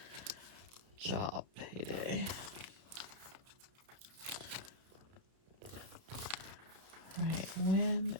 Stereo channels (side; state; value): left; late; 32 ms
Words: job payday. Right, when